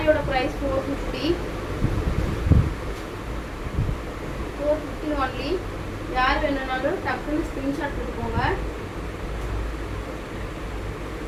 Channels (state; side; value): identical; both; correlation 1.00